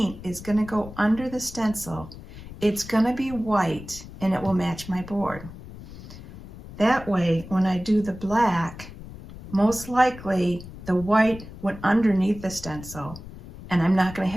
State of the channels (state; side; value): noise; left; rumble, 15 dB below the sound